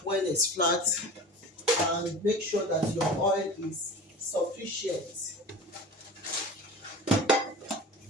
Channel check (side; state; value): both; normal; correlation 0.36